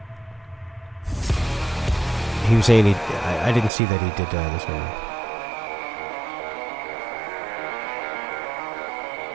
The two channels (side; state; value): left; drops out; at 3.7 s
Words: He was saying I didn't see that he did this one.